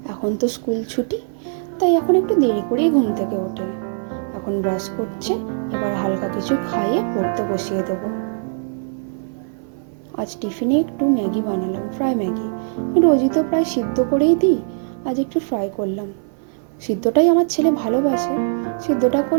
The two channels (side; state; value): left; silent; 56 dB below the other